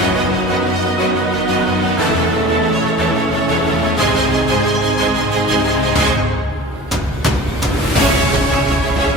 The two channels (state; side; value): normal; both; correlation 0.40